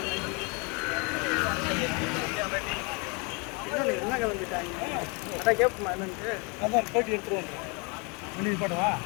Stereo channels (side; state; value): right; quieter; 31.8 dB